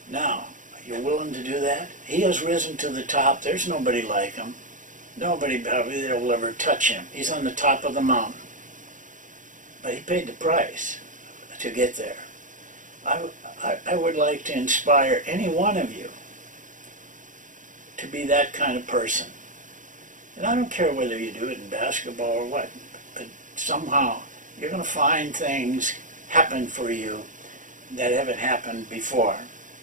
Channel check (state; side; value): late; left; 0.37 ms